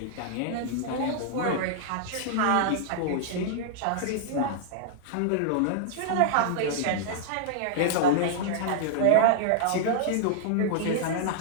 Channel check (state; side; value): different; both; correlation -0.01